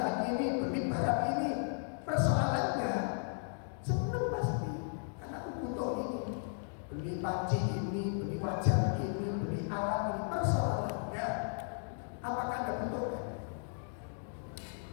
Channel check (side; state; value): right; silent; digital silence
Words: ini, beli barang ini. Persoalannya senang pasti karena aku butuh ini. Beli panci ini, beli wajan ini, beli alat ini. Persoalannya apakah Anda butuhkan?